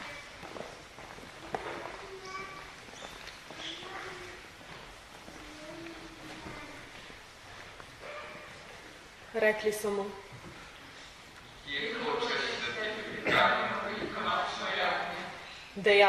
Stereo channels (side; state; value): both; identical; correlation 1.00